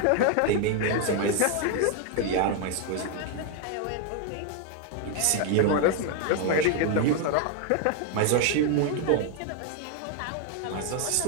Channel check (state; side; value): different; both; correlation 0.01